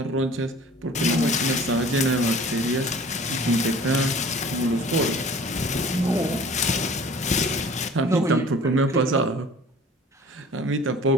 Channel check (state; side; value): normal; both; correlation 0.46